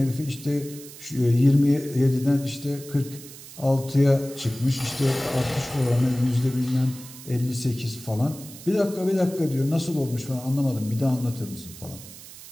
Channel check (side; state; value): right; noise; hiss, 16 dB below the sound